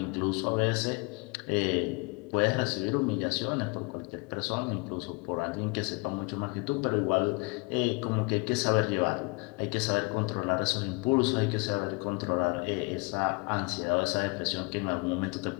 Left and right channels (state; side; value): quieter; right; 29.1 dB